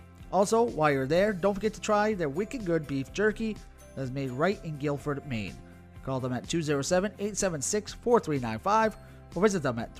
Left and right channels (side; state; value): both; identical; correlation 1.00